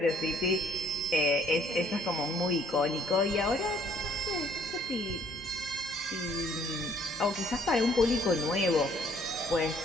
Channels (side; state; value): both; normal; correlation 0.61